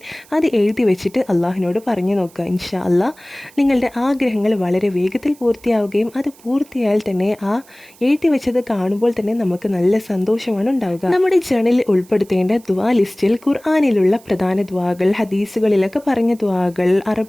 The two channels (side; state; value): right; noise; hiss, 26 dB below the sound